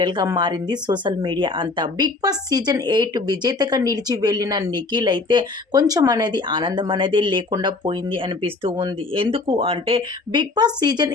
మారింది సోషల్ మీడియా అంతా. బిగ్ బాస్ సీజన్ 8 విజేతగా నిలిచి వెళ్ళిన నిఖిల్ అయితే కొంచెం అనేది ఆనందం అనేది లేకుండా పోయింది అనిపిస్తూ ఉంది. ఎందుకు అంటే బిగ్ బాస్ సీజన్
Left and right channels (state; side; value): quieter; right; 3.6 dB